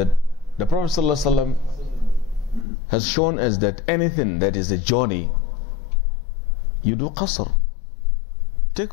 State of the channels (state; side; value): drops out; right; at 2.7 s